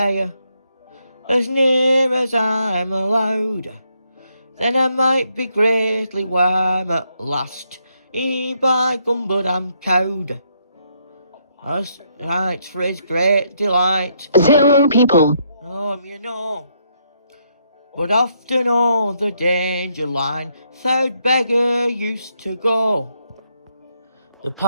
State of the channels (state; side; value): inverted; both; correlation -0.75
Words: as near as I'm allowed. Then I might be greatly warm at last. By gum, but I'm cowed. As right for his great delight. 0 people, You know. But often o'er the danger line, third beggar used to go. The